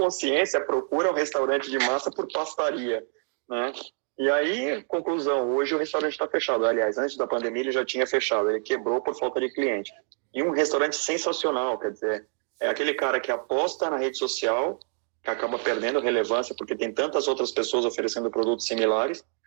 procura um restaurante de massa por pastaria, né? E aí, conclusão, hoje o restaurante está fechado. Aliás, antes da pandemia ele já tinha fechado, ele quebrou por falta de cliente. E um restaurante sensacional, quer dizer, é aquele cara que aposta na rede social, que acaba perdendo relevância porque tem tantas outras pessoas oferecendo produtos similares,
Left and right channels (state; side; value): silent; left; 60 dB below the other